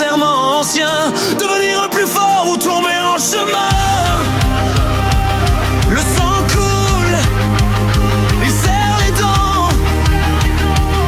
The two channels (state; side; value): identical; both; correlation 1.00